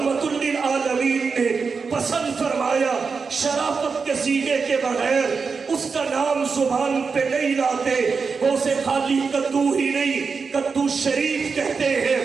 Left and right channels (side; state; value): left; quieter; 5.1 dB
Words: للعالمین نے پسند فرمایا شرافت کے سینے کے بغیر اس کا نام زبان پہ نہیں لاتے، وہ اسے خالی کدو ہی نہیں کدو شریف کہتے ہیں،